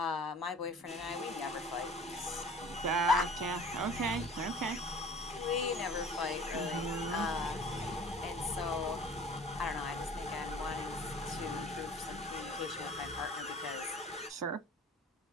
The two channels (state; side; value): normal; both; correlation 0.46